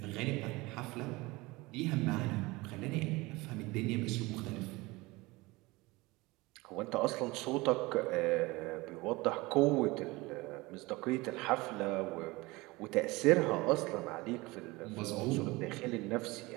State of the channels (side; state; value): left; quieter; 22.3 dB